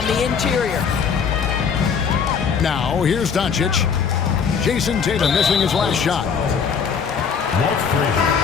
the interior. Now, here's Doncic. Jason Tatum missing his last shot. Walt Frazier.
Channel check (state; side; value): quieter; right; 6.5 dB